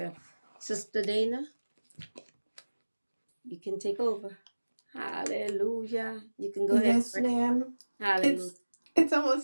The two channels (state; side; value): inverted; both; correlation -1.00